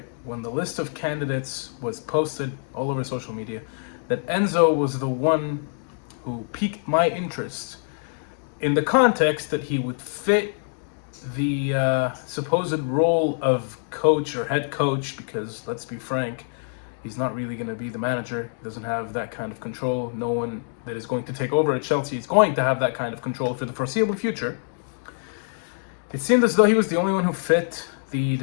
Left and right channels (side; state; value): right; silent; digital silence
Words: when the list of candidates was posted all over social media, that Enzo was the one who piqued my interest in the context that he would fit the supposed role of coach or head coach, because let's be frank, he's not really going to be the manager. He doesn't have that kind of control. No one that is going to take over at Chelsea is going to have that kind of control for the foreseeable future. It seemed as though he was the only one who fit the